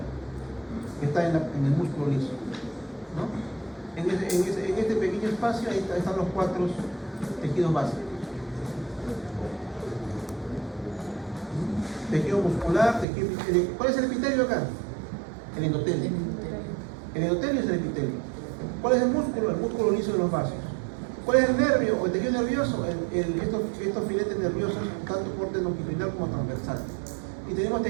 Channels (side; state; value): left; drops out; at 13.1 s